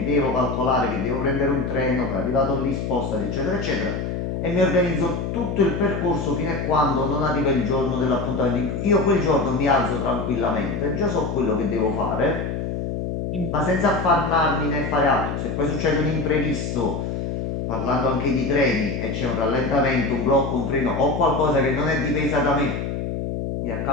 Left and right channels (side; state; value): left; noise; hum, 3 dB below the sound